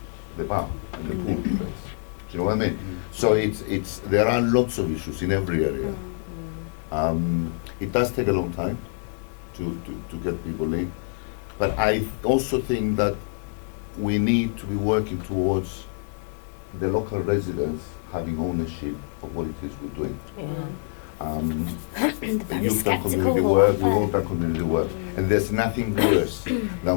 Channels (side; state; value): right; silent; 57 dB below the other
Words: bar and the pool place. Do you know what I mean? So there are lots of issues in every area. It does take a long time to get people in, but I also think that we need to be working towards the local residents having ownership of what it is we're doing. Very You've done community sceptical, work, we've aren't all they? done community work, and there's nothing worse